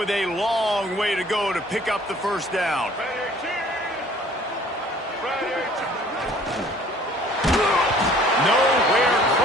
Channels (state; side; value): normal; both; correlation 0.54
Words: a long way to go to pick up the first down. Nowhere